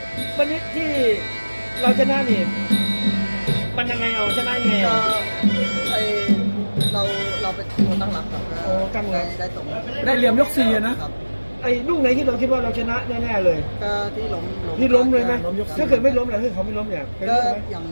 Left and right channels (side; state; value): both; inverted; correlation -1.00